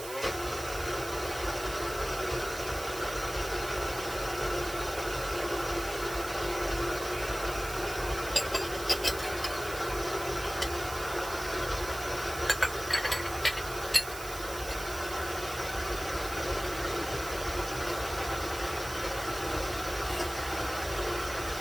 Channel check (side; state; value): right; noise; hiss, 10 dB below the sound